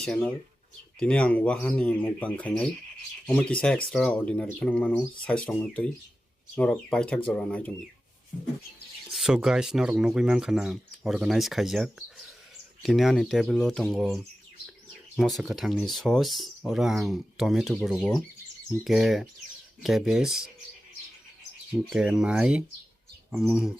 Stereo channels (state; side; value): normal; both; correlation 0.94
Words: Dini ang wahan ni mukbang khainai. Omo kisa extraordinary khanang mano size rong tui. Norok paithak jora nai tumi. So guys, norok nugui man khana organize khaijak. Dini ani table o tongo mosa kathangni sauce ora ang tomato burugo. Ke cabbage. Ke mai.